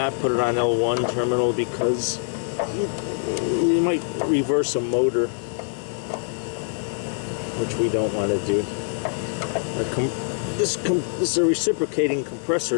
put it on L1 terminal, because you might reverse a motor, which we don't want to do. This is a reciprocating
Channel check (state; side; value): silent; right; digital silence